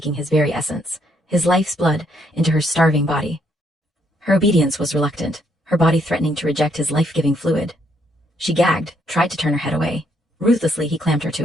his very essence, his life's blood, into her starving body. Her obedience was reluctant, her body threatening to reject his life-giving fluid. She gagged, tried to turn her head away. Ruthlessly he clamped her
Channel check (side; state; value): both; normal; correlation 0.72